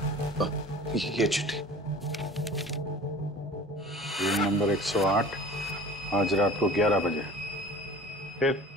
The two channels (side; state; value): both; normal; correlation 0.43